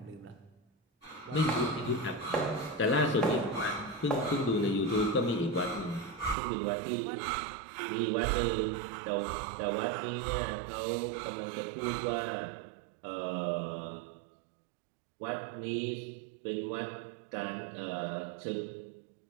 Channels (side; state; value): left; drops out; at 6.4 s